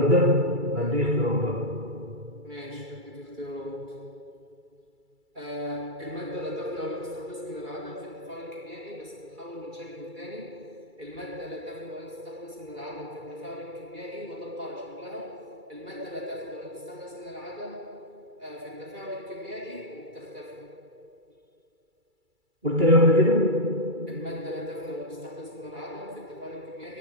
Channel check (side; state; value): left; late; 2.3 ms